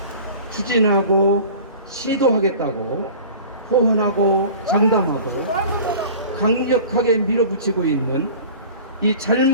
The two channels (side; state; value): both; inverted; correlation -0.41